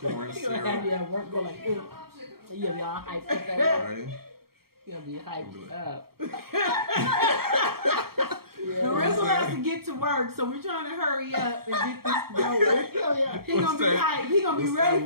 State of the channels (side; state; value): left; late; 0.94 ms